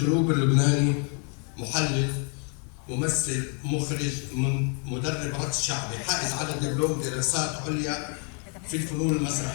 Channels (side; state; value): right; quieter; 39.7 dB